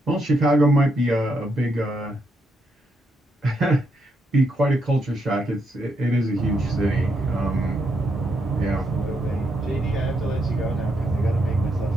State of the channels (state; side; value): normal; both; correlation 0.79